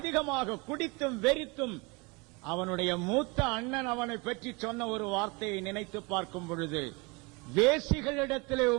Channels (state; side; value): quieter; left; 27.4 dB